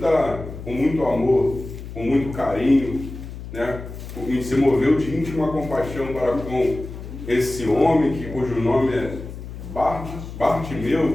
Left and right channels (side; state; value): left; noise; hum, 11 dB below the sound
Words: amor, com muito carinho, né? E se moveu de íntima compaixão para com esse homem, cujo nome é